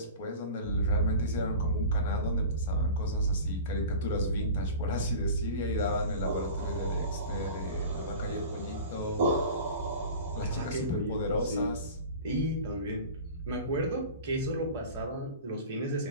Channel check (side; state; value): both; inverted; correlation -0.36